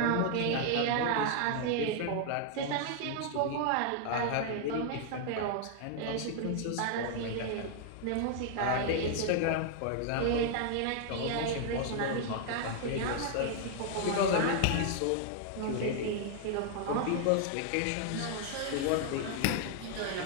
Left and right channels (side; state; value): both; different; correlation 0.00